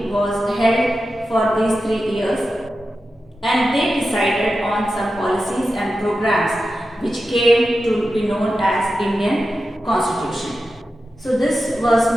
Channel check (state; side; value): normal; both; correlation 0.91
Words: was held for these 3 years, and they decided on some policies and programs which came to be known as Indian Constitution. So this